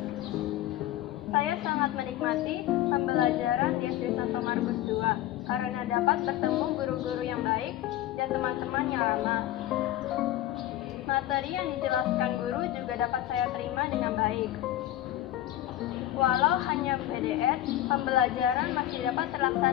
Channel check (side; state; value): right; quieter; 13.9 dB